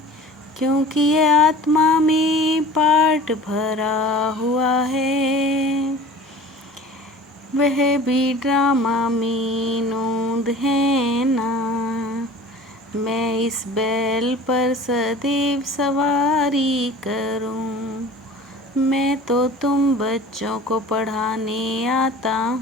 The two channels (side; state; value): both; normal; correlation 0.42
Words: क्योंकि ये आत्मा में पार्ट भरा हुआ है। वह भी ड्रामा में नोंद है ना। मैं इस बैल पर सदैव सवारी करूं। मैं तो तुम बच्चों को पढ़ाने आता